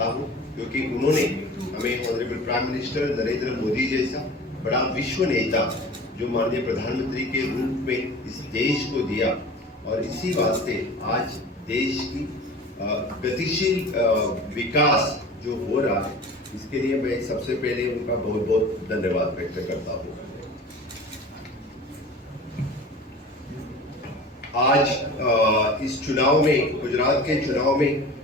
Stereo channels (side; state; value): both; normal; correlation 0.39